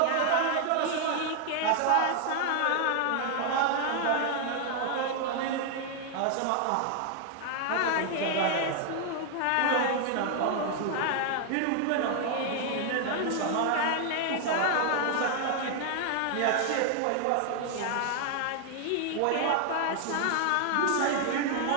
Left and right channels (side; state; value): both; different; correlation 0.00